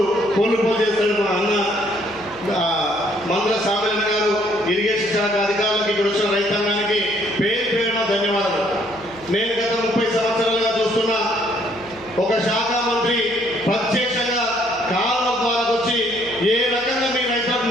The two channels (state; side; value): noise; right; hum, 24 dB below the sound